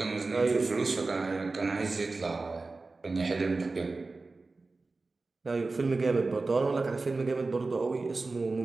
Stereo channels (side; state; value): left; quieter; 3.6 dB